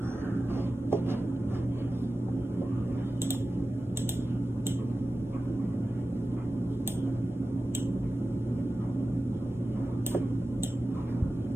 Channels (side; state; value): both; normal; correlation 0.94